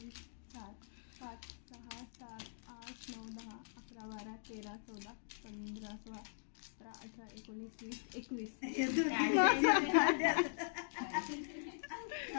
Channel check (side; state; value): right; silent; digital silence